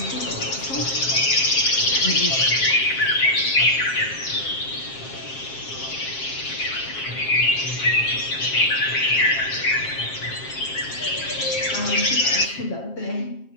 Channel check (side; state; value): right; late; 7.5 ms